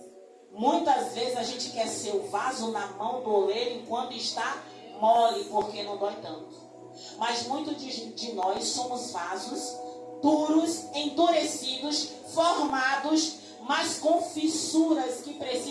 Muitas vezes a gente quer ser o vaso na mão do oleiro enquanto está mole, porque não dói tanto. Mas muitos de nós somos vasos duros, endurecidos, formados, mas com fissuras que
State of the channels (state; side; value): identical; both; correlation 1.00